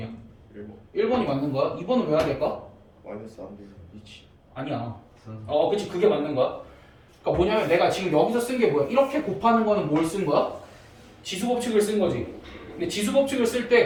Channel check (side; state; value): both; identical; correlation 1.00